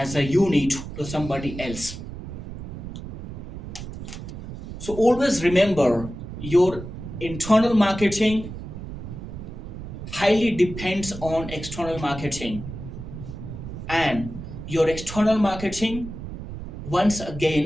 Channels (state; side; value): noise; right; rumble, 10 dB below the sound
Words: a unit to somebody else. So always remember, your internal marketing highly depends on external marketing, and your external marketing once